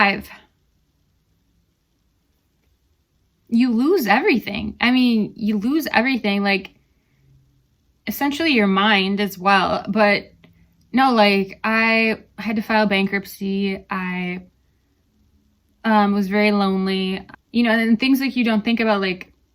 you lose everything. I mean, you lose everything, like essentially your mind as well. But no, like I had to file bankruptcy. I was very lonely, and things like you don't think about, like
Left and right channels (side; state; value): both; identical; correlation 1.00